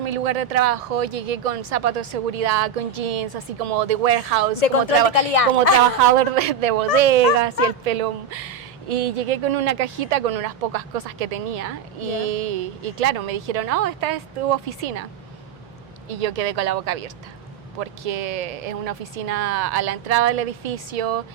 lugar de trabajo, llegué con zapatos de seguridad, con jeans, así como de warehouse, De control de calidad. como trabajador de bodegas y el pelo. Y llegué con una cajita con unas pocas cosas que tenía y claro, me dijeron, esta es tu oficina. Y yo quedé con la boca abierta, porque es una oficina a la entrada del edificio,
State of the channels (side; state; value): left; quieter; 6.8 dB